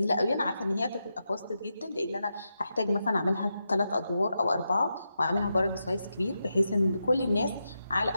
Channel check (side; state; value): both; inverted; correlation -0.87